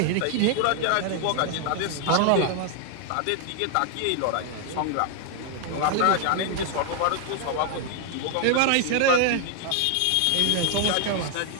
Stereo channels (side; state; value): both; different; correlation 0.00